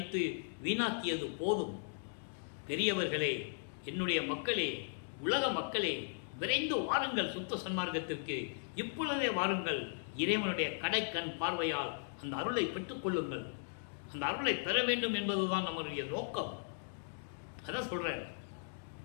வீணாக்கியது போதும். பெரியவர்களே, என்னுடைய மக்களே, உலக மக்களே, விரைந்து வாருங்கள் சுத்த சன்மார்க்கத்திற்கு. இப்பொழுதே வாருங்கள். இறைவனுடைய கடைக்கண் பார்வையால் அந்த அருளை பெற்றுக் கொள்ளுங்கள். அந்த அருளை பெற வேண்டும் என்பதுதான் நம்முடைய நோக்கம். அதான் சொல்றேன்,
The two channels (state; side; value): silent; right; digital silence